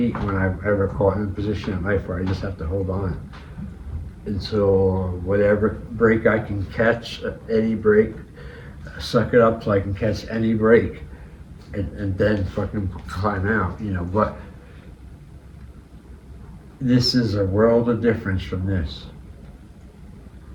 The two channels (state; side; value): identical; both; correlation 1.00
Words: when I've ever caught in a position in life where I just have to hold on until whatever break I can catch, any break, suck it up so I can catch any break, and then fucking climb out, but this is a world of difference from this.